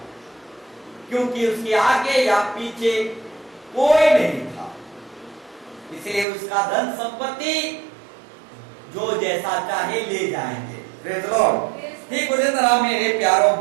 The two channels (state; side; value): drops out; left; at 6.2 s